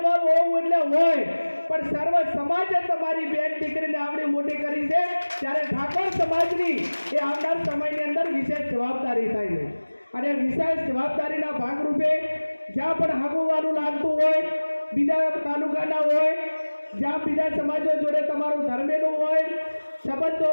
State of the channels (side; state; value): both; inverted; correlation -1.00